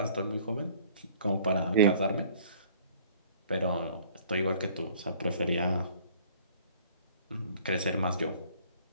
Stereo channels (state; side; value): inverted; both; correlation -0.53